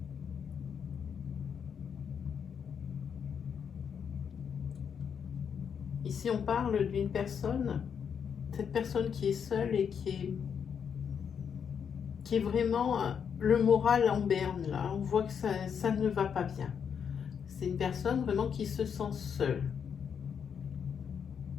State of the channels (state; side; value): quieter; right; 7.3 dB